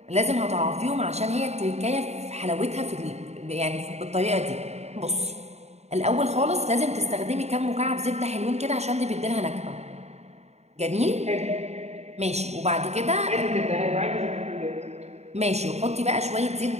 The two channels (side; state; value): left; late; 0.32 ms